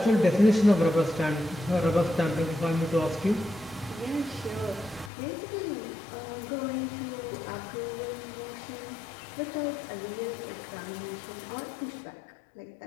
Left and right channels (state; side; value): drops out; right; at 5.1 s